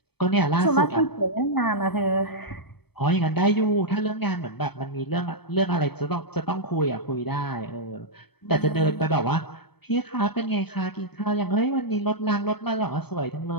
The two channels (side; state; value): right; late; 0.97 ms